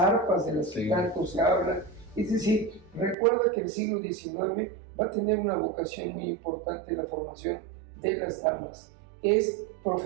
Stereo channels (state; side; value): drops out; left; at 3.2 s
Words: de las que tanto se hablan. Es decir, recuerda que el siglo XIX va a tener una vocación muy importante en la formación de las damas. es